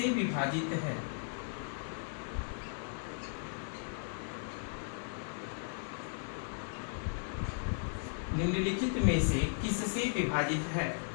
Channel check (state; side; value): silent; right; digital silence